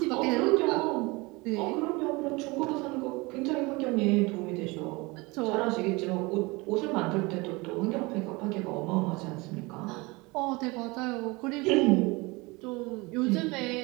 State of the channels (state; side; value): quieter; left; 24.7 dB